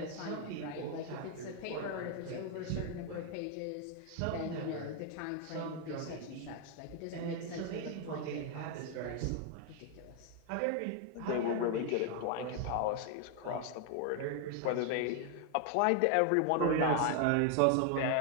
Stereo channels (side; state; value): both; different; correlation 0.00